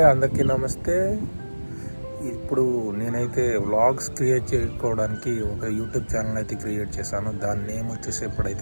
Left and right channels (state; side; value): inverted; both; correlation -1.00